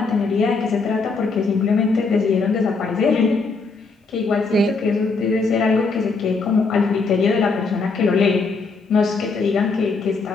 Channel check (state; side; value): quieter; right; 4.2 dB